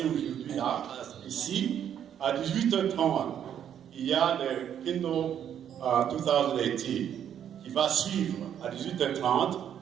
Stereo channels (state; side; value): quieter; left; 9.4 dB